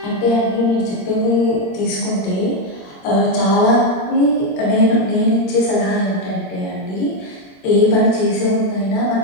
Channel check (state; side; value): late; right; 21 ms